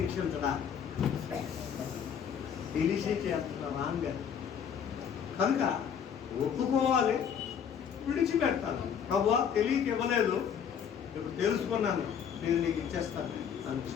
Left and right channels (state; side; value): quieter; right; 7.8 dB